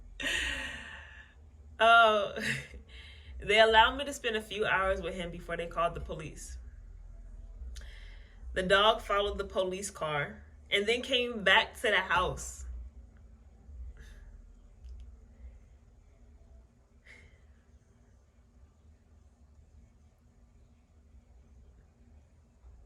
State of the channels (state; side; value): identical; both; correlation 1.00